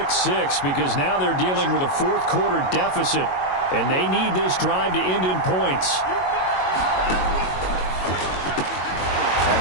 6 because now they're dealing with a 4th quarter deficit. And they need this drive to end in points. And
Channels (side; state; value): right; late; 22 ms